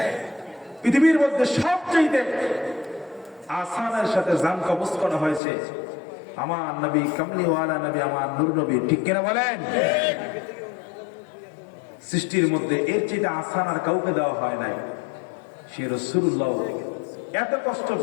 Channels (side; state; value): right; drops out; at 5.4 s